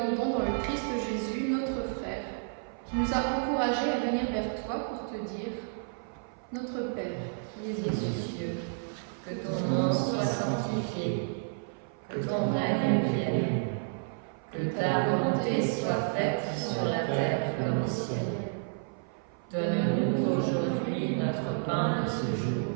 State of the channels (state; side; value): silent; left; 55 dB below the other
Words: dans le Christ Jésus, notre frère, qui nous a encouragés à venir vers toi pour te dire « Notre Père, qui es aux cieux, que ton nom soit sanctifié, que ton règne vienne, que ta volonté soit faite sur la terre comme au ciel. Donne-nous aujourd'hui notre pain de ce jour.